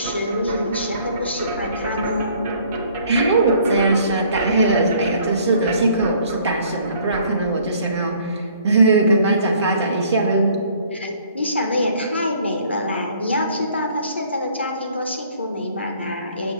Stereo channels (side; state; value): both; inverted; correlation -0.58